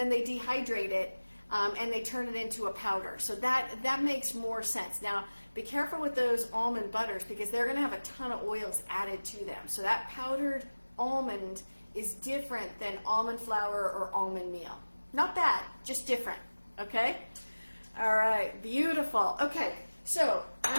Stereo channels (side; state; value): both; inverted; correlation -1.00